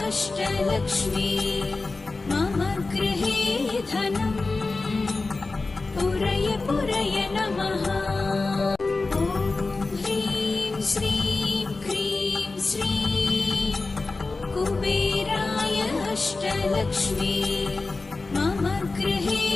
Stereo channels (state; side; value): quieter; right; 3.6 dB